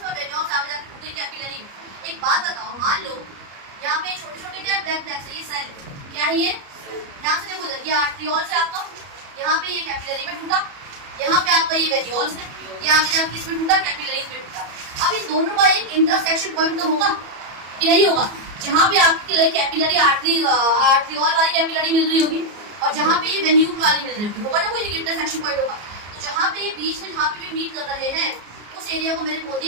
वेन्यूल्स आगे जाके टूटे कैपिलरी में। एक बात बताओ, मान लो यहाँ पे छोटे छोटे क्या ब्लैक ब्लैक से ये सेल क्या है, ये ध्यान से देखो इधर, ये आर्टरियोल से आपका, यहाँ पे ये कैपिलरी में टूटा, यहाँ पे आपका ये वेन्यूल्स है, ये आगे जाके किसमें टूटा, कैपिलरीज में टूटा। अब इन दोनों का एक इंटरसेक्शन पॉइंट तो होगा कि नहीं होगा, जहाँ पे आपकी कैपिलरी आर्टरियोल वाली कैपिलरी मिल रही होगी और जहाँ पे ये वेन्यूल वाली मिल रही होगी, होगा ना, कोई एक इंटरसेक्शन पॉइंट होगा। तो जहाँ पे ये बीच में जहाँ पे भी मीट कर रहे हैं उस एरिया को मैंने बोल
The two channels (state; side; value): late; left; 34 ms